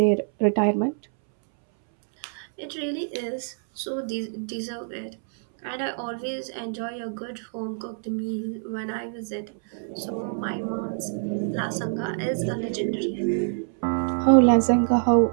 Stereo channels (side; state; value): left; silent; 61 dB below the other